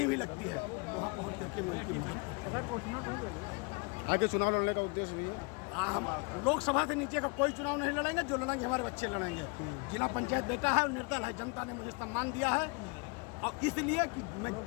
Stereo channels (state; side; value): quieter; right; 30.7 dB